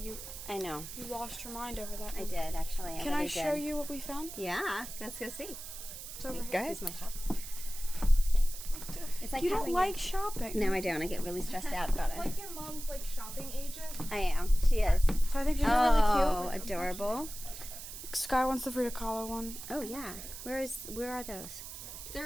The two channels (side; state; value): right; noise; hiss, 11 dB below the sound